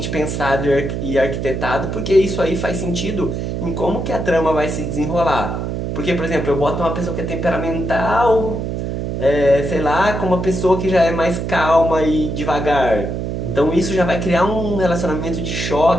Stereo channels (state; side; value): noise; right; hum, 3 dB below the sound